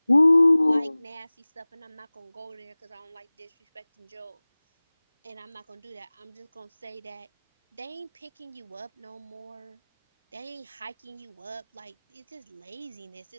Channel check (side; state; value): both; inverted; correlation -1.00